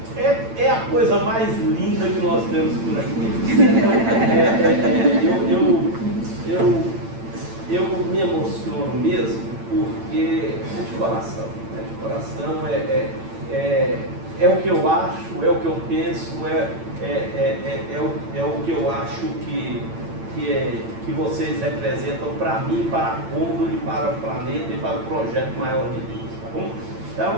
é a coisa mais linda que nós temos por aqui. Eu me emociono mesmo, porque de coração é o que eu acho, é o que eu penso, é o que eu acho que que vocês representam para mim, para a Condor e para o planeta e para o projeto maior de Deus, tá bom?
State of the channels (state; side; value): late; left; 8.9 ms